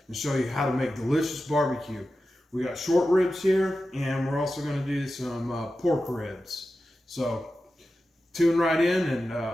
and show you how to make delicious barbecue. We got short ribs here, and we're also going to do some pork ribs. So tune right in, and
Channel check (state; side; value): normal; both; correlation 0.92